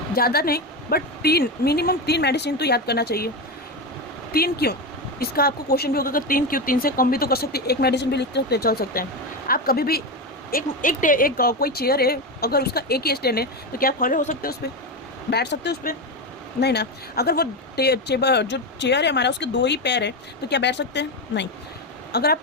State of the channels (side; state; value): both; normal; correlation 0.15